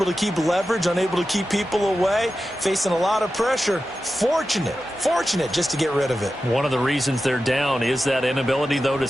to keep leverage, unable to keep people away, facing a lot of pressure. Fortunate just to get rid of it. One of the reasons they're down is that inability, though, to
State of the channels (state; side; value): normal; both; correlation 0.92